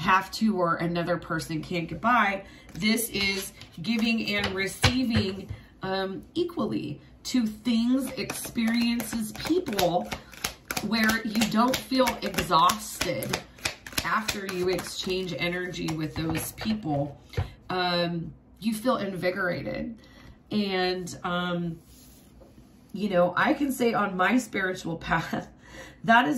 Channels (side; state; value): both; identical; correlation 1.00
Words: to or another person can't get by. This is giving and receiving equally to things, experiences, people, where you don't feel exhausted after you exchange energy with those people. You feel invigorated. And, you know, I can say on my spiritual path, that